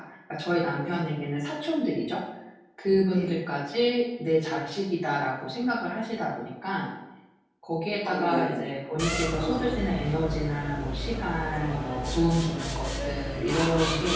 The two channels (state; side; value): identical; both; correlation 1.00